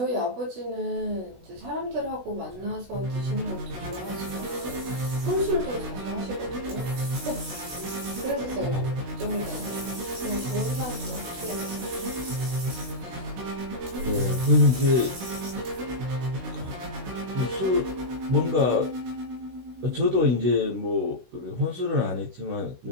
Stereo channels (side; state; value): left; late; 16 ms